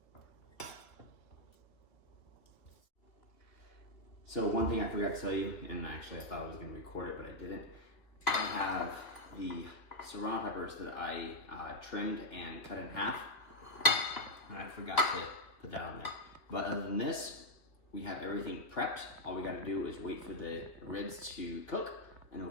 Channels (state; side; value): late; right; 2.6 ms